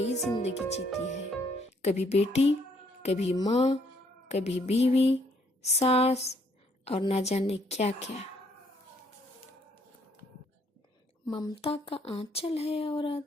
जिंदगी जीती है, कभी बेटी, कभी माँ, कभी बीवी, सास और ना जाने क्या क्या। ममता का आंचल है औरत,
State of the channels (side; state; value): both; normal; correlation 0.68